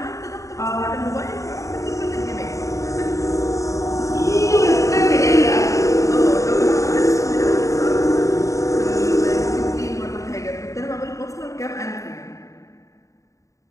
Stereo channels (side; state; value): right; late; 0.15 ms